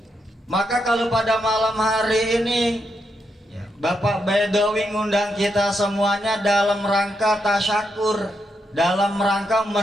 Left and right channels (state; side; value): normal; both; correlation 0.82